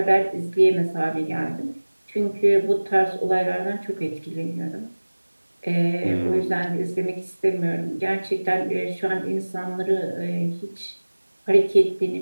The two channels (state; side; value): inverted; both; correlation -1.00